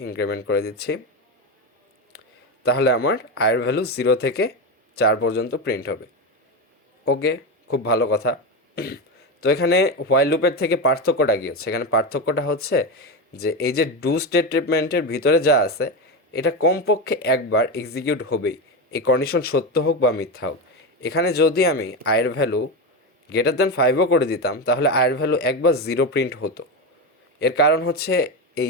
ইনক্রিমেন্ট করে দিচ্ছি, তাহলে আমার আয়ের ভ্যালু 0 থেকে 4 পর্যন্ত প্রিন্ট হবে। ওকে, খুব ভালো কথা। তো এখানে হোয়াইল লুপের থেকে পার্থক্যটা কী হচ্ছে, এখানে পার্থক্যটা হচ্ছে যে এই যে ডু স্টেটমেন্টের ভিতরে যা আছে এটা কমপক্ষে একবার এক্সিকিউট হবেই, এই কন্ডিশন সত্য হোক বা মিথ্যা হোক। এখানে যদি আমি আয়ের ভ্যালু গ্রেটার দ্যান 5ও করে দিতাম তাহলে আয়ের ভ্যালু একবার 0 প্রিন্ট হতো। এর কারণ হচ্ছে এই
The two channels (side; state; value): both; normal; correlation 0.16